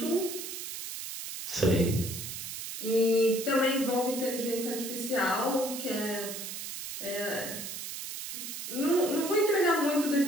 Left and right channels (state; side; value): noise; right; hiss, 7 dB below the sound